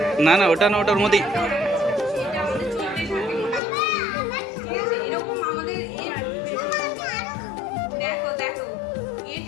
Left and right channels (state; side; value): drops out; right; at 3.6 s